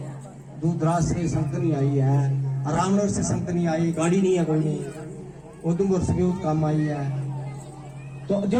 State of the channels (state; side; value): identical; both; correlation 1.00